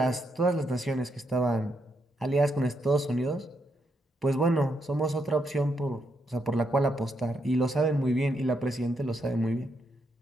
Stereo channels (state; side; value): normal; both; correlation 0.79